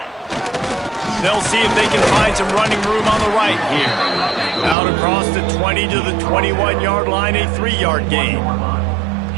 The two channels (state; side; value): drops out; left; at 4.8 s